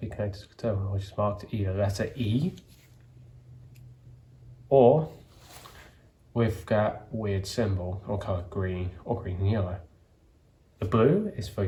connected to the terminal, which is marked either letter E or with that weird symbol or colour green or green and yellow. The blue is for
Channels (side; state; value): both; identical; correlation 1.00